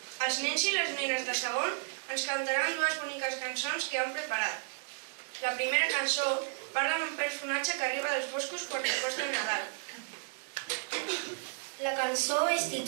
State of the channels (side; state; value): left; silent; digital silence